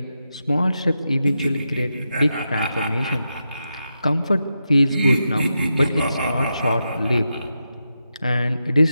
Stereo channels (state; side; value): inverted; both; correlation -0.87